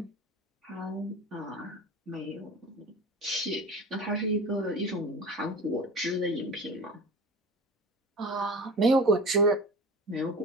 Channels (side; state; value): both; normal; correlation 0.34